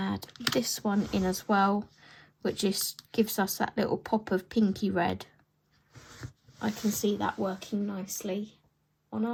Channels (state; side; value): identical; both; correlation 1.00